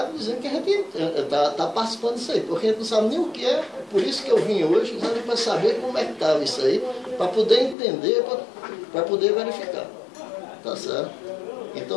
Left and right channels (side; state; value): right; drops out; at 7.8 s